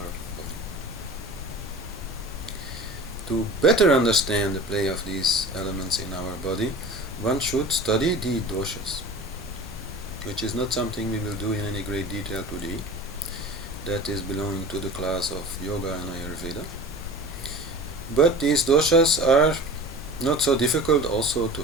body. To better understand the play of these elements in our body, one should study the doshas, which is not something we will do in any great detail today. That is belonging to the class of Yoga and Ayurveda. But these doshas are not so difficult also to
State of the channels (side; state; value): both; normal; correlation 0.37